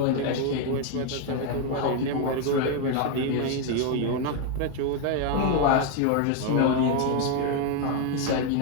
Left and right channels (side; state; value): both; different; correlation 0.01